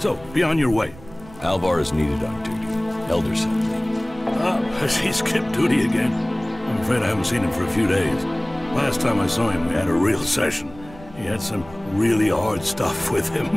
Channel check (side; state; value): right; noise; rumble, 20 dB below the sound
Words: be on your way. Alvar is needed on duty. Elder sent me. Has he skipped duty again? I'm afraid I haven't seen him for a few days. Last time I saw him, we had a real session. He had some really hard stuff with